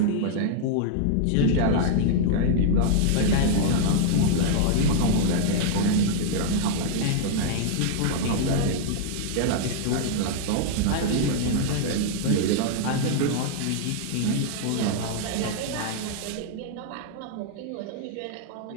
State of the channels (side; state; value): both; different; correlation -0.01